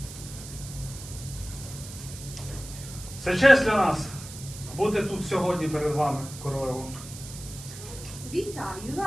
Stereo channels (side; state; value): right; noise; hiss, 13 dB below the sound